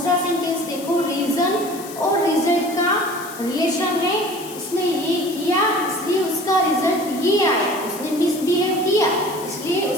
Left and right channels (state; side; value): noise; left; hiss, 14 dB below the sound